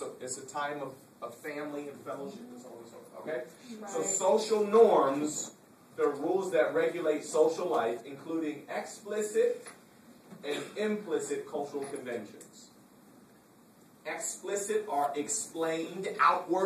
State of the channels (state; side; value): identical; both; correlation 1.00